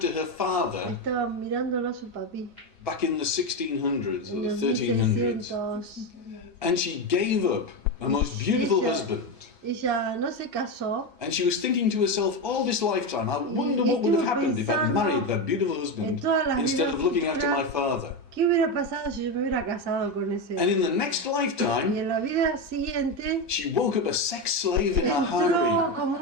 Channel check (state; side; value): normal; both; correlation 0.13